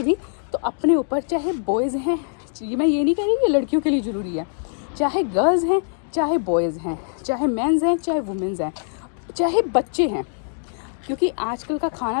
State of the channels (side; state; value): right; silent; digital silence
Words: भी, तो अपने ऊपर, चाहे बॉयज़ हैं, मैं ये नहीं कह रही कि लड़कियों के लिए ज़रूरी है, चाहे गर्ल्स हैं, चाहे बॉयज़ हैं, चाहे मेंस हैं, चाहे वुमेंस हैं, चाहे बच्चे हैं, क्योंकि आजकल का